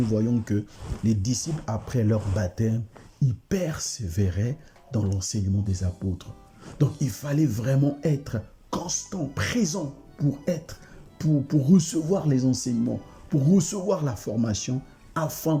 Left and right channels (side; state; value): both; identical; correlation 1.00